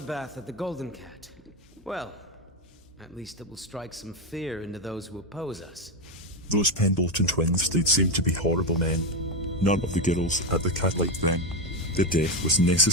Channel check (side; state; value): both; normal; correlation 0.10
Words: at the Golden Cat. Well, at least it will strike some fear into those who oppose us. Those Pendleton twins did seem to be horrible men. None of the girls at the cat liked them. The death was